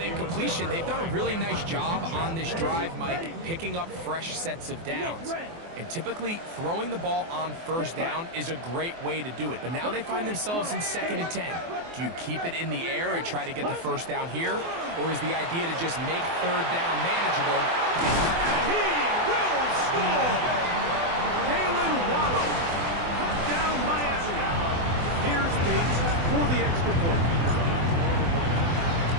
they've done a really nice job on this drive, Mike, picking up fresh sets of downs. And typically, throwing the ball on 1st down is a great way to do it. But now they find themselves in 2nd and 10. Do you keep it in the air and try to get the 1st down here? Or is the idea to just make 3rd down manageable? And he will score! Jalen Waddle. Touchdown, Miami. Here's Bates for the extra point.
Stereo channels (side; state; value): left; late; 24 ms